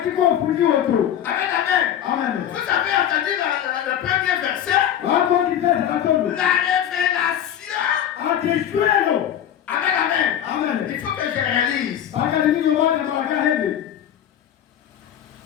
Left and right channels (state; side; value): quieter; right; 10.1 dB